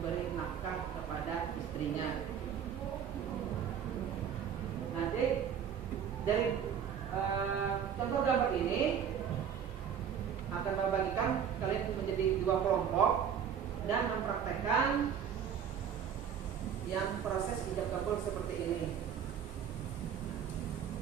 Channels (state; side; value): quieter; left; 8.2 dB